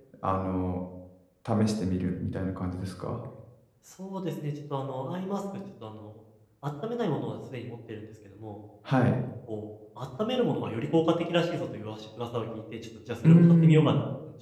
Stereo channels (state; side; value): identical; both; correlation 1.00